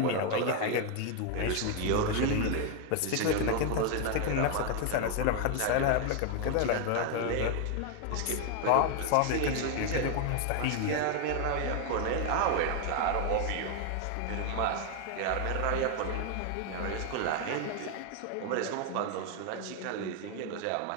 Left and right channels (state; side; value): different; both; correlation 0.01